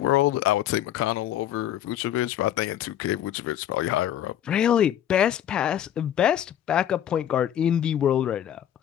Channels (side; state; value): right; quieter; 10.8 dB